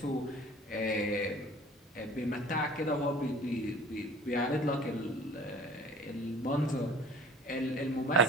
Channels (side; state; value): both; normal; correlation 0.46